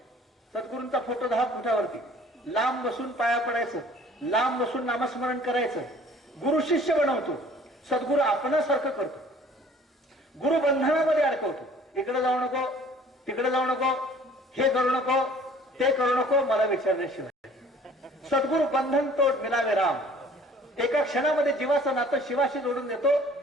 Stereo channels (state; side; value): normal; both; correlation 0.53